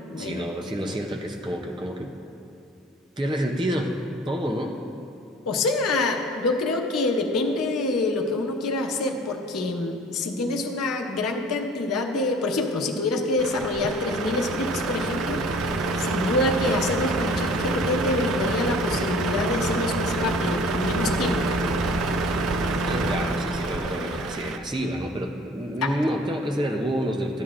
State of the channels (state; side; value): normal; both; correlation 0.48